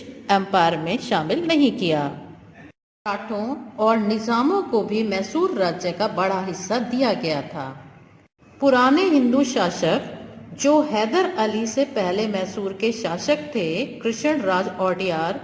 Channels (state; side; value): identical; both; correlation 1.00